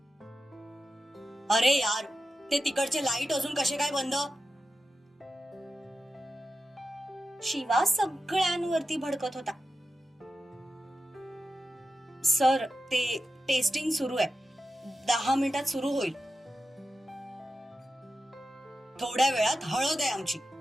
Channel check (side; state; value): both; normal; correlation 0.91